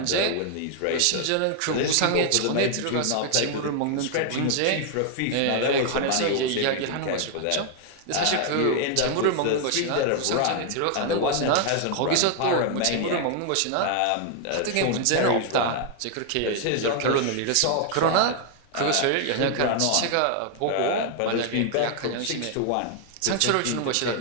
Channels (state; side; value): different; both; correlation 0.00